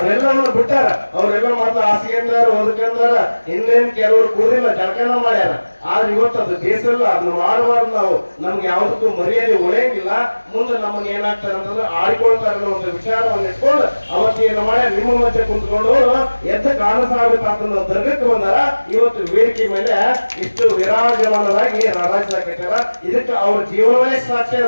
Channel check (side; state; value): both; inverted; correlation -1.00